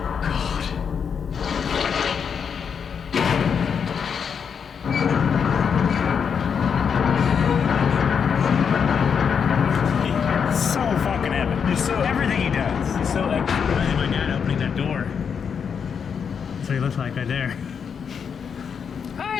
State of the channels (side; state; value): right; quieter; 6.8 dB